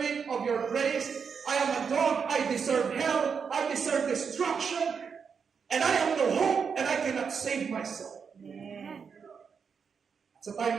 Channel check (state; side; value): quieter; left; 6.2 dB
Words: of your grace, I am a dog, I deserve hell, I deserve destruction, and I have no hope, and I cannot save myself. Amen. Sa time